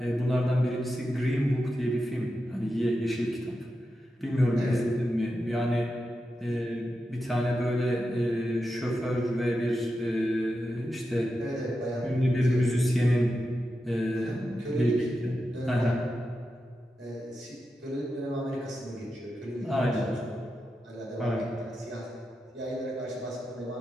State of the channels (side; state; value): both; normal; correlation 0.89